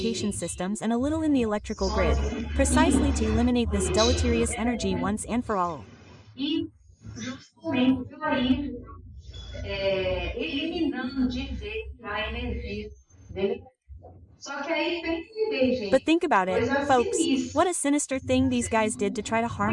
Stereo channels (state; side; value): identical; both; correlation 1.00